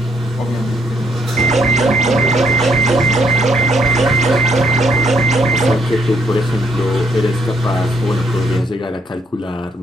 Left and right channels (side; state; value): both; normal; correlation 0.71